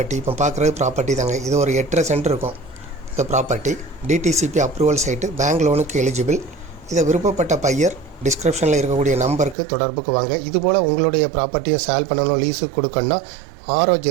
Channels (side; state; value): left; drops out; at 9.6 s